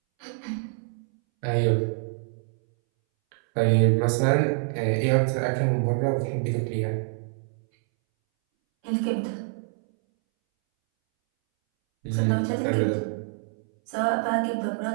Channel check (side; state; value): left; silent; 61 dB below the other